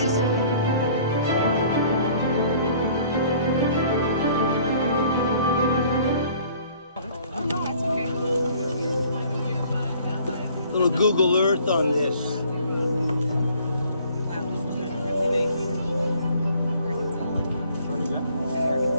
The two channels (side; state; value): both; inverted; correlation -0.55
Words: Little Google Earth on this.